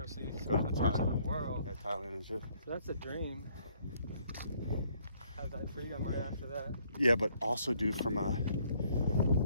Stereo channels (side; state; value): both; inverted; correlation -0.65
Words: see some other parts of the world. yeah, Thailand and shit. So that's a dream. Have that freedom right after that. Yeah, but also, dude, from a